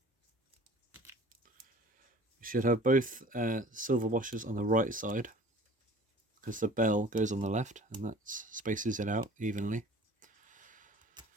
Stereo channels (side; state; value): both; normal; correlation 0.46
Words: We should have both silver washers on the right side, because the bell goes on the left, and that spaces it out evenly.